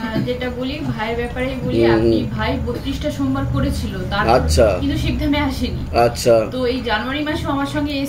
যেটা বলি ভাইয়ের ব্যাপারে বলি, আপনি ভাই 32টা সোমবার করেছিল, আচ্ছা, কিন্তু শিবধামে আসেনি। আচ্ছা, তো এই জানুয়ারি মাসে আমার সঙ্গে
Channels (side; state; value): both; identical; correlation 1.00